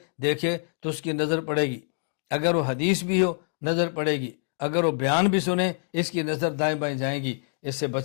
دیکھے تو اس کی نظر پڑے گی، اگر وہ حدیث بھی ہو نظر پڑے گی، اگر وہ بیان بھی سنے اس کی نظر دائیں بائیں جائیں گی۔ اس سے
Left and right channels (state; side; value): silent; right; digital silence